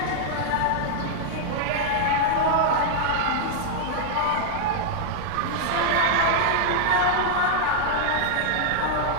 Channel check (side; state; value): both; different; correlation -0.01